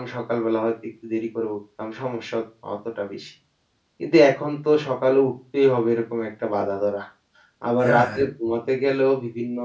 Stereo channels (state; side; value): identical; both; correlation 1.00